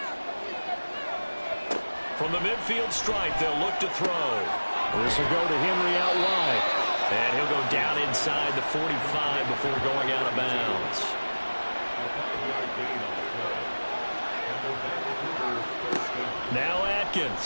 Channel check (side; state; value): both; inverted; correlation -1.00